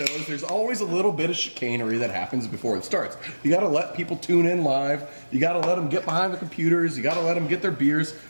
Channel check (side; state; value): both; inverted; correlation -1.00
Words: there's always a little bit of chicanery that happens before it starts. You got to let people tune in live. You got to let them get behind the computers. You got to let them get their beers.